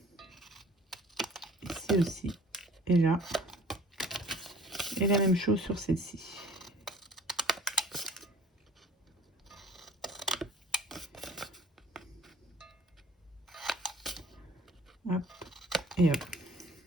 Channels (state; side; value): normal; both; correlation 0.50